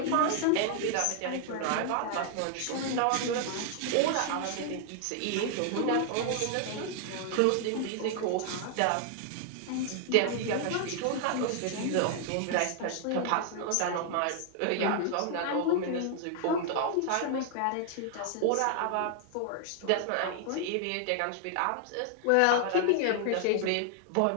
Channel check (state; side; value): different; both; correlation 0.00